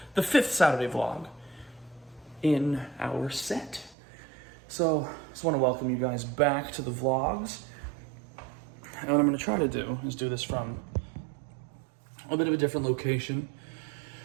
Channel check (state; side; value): drops out; left; at 4.0 s